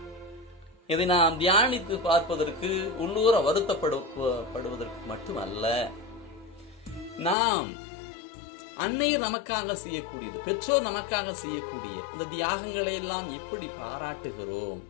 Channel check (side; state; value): right; drops out; at 7.4 s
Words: இதை நாம் தியானித்து பார்ப்பதற்கு, உள்ளூர வருத்தப்படுவதற்கு மட்டுமல்ல, நாம் அன்னையர் நமக்காக செய்யக்கூடியது, பெற்றோர் நமக்காக செய்யக்கூடிய இந்த தியாகங்களை எல்லாம் எப்படி பாராட்டுகிறோம்.